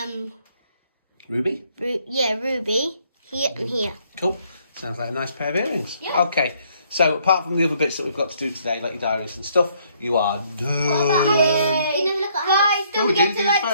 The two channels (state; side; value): inverted; both; correlation -0.67